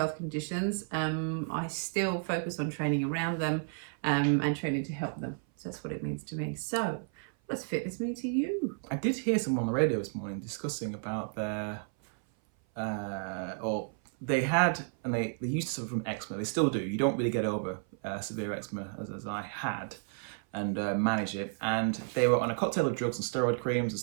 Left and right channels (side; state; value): left; silent; 56 dB below the other